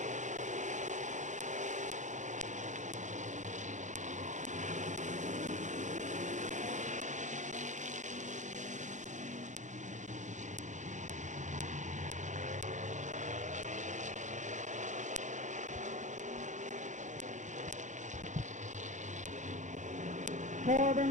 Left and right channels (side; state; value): left; late; 0.35 ms